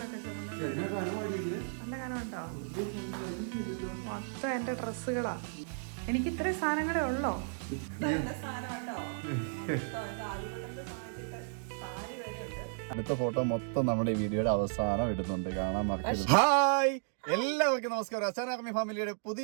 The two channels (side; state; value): left; silent; digital silence